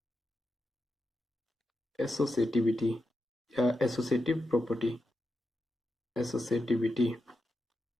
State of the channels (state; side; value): normal; both; correlation 0.88